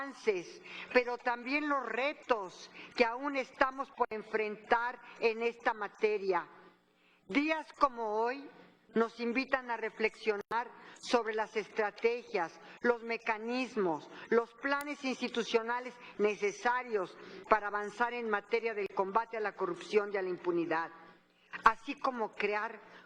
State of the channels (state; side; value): identical; both; correlation 1.00